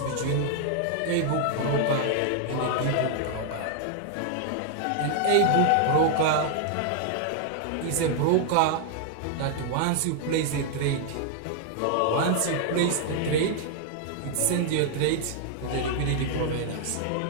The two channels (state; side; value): different; both; correlation 0.00